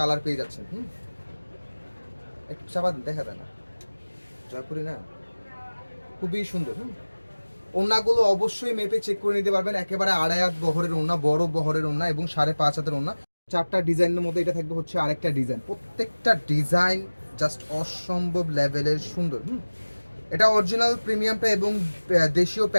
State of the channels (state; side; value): inverted; both; correlation -1.00